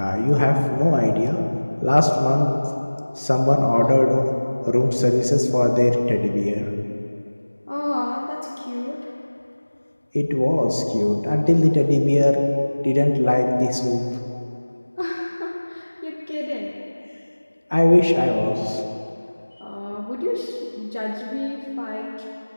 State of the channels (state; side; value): inverted; both; correlation -1.00